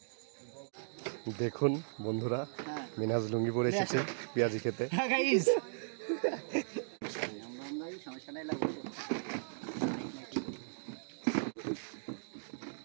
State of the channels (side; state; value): left; silent; digital silence